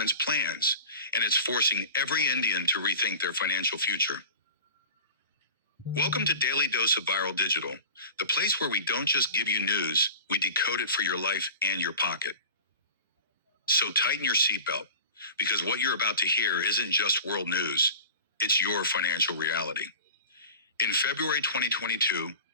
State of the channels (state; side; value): inverted; both; correlation -0.36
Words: plans, and it's forcing every Indian to rethink their financial future. Welcome to Daily Dose of Viral Digital, the place where we don't just give you news, we decode it for your life and your pocket. So tighten your seatbelt, because what you're about to hear isn't just world news, it's your financial reality. In February 2022,